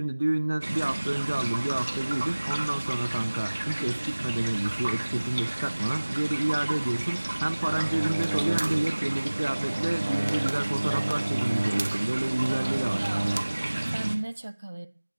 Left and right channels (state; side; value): inverted; both; correlation -1.00